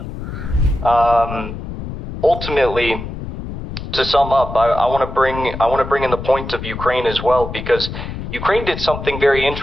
Ultimately, to sum up, I want to bring in the point of Ukraine as well, because Ukraine did something very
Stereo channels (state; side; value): noise; left; rumble, 8 dB below the sound